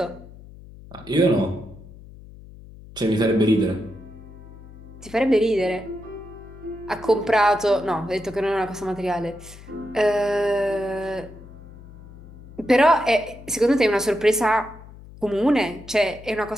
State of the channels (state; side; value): noise; left; hum, 18 dB below the sound